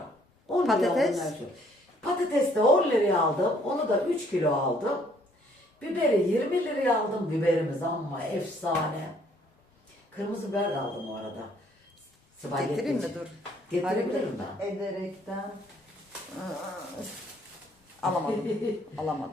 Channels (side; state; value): both; normal; correlation 0.64